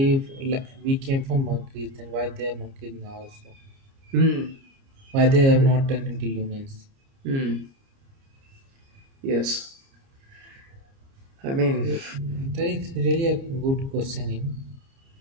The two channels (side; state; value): left; late; 30 ms